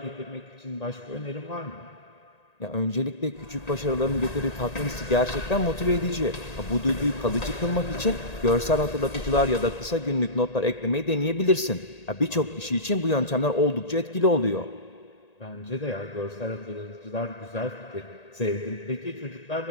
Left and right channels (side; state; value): right; late; 1.8 ms